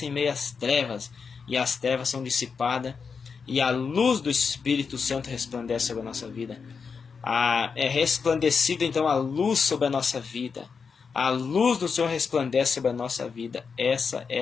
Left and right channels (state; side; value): quieter; right; 5.6 dB